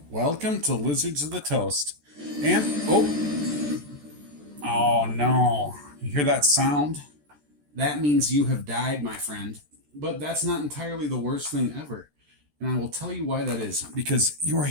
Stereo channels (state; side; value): late; left; 14 ms